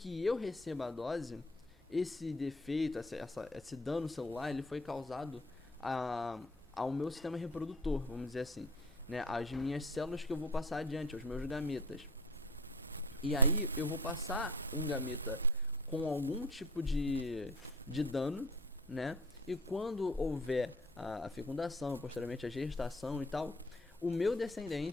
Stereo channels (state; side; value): normal; both; correlation 0.45